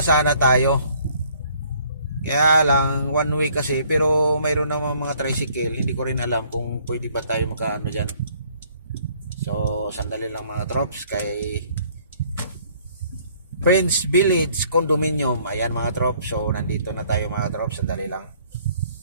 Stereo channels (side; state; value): both; inverted; correlation -0.61